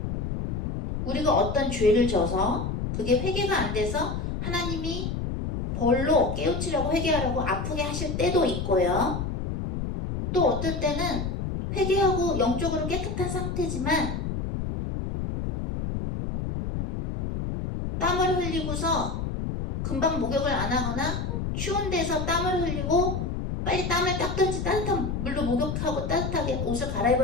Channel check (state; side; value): noise; left; rumble, 3 dB below the sound